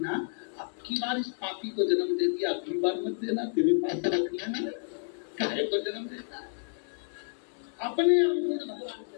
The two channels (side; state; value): right; silent; digital silence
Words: आपकी बार इस पापी को जन्म दे दिया, अगली बार मत देना, तेरे पास रख लेना। काहे को जन्म देता है? अपने अवगुण भगवान से।